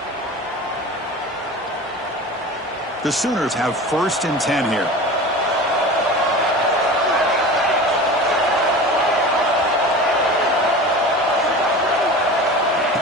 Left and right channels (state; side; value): normal; both; correlation 0.34